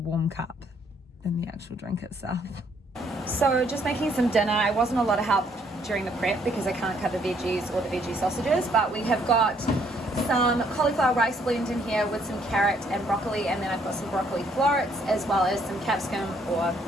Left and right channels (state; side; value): normal; both; correlation 0.67